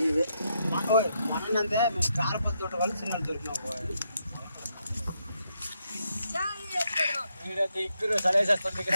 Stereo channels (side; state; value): both; inverted; correlation -0.79